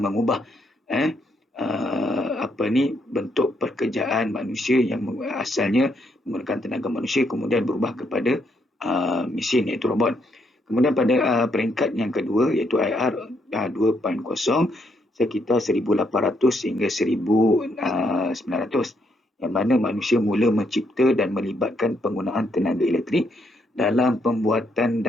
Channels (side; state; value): both; normal; correlation 0.75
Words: bentuk pekerjaan manusia yang asalnya menggunakan tenaga manusia kemudian berubah kepada mesin, iaitu robot. Kemudian pada peringkat yang kedua iaitu IR 2.0 sekitar 1800 hingga 1900, yang mana manusia mula mencipta dan melibatkan penggunaan tenaga elektrik dalam pembuatan